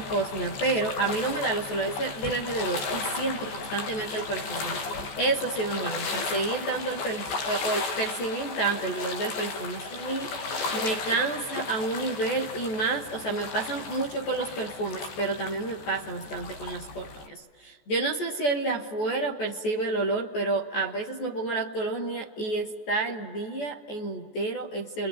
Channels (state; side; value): late; right; 14 ms